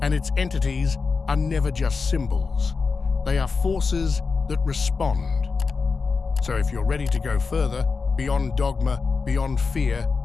and its entities are never just symbols. They are forces that respond. So if you're ready to go further, beyond dogma, beyond fear,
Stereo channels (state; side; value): quieter; right; 4.7 dB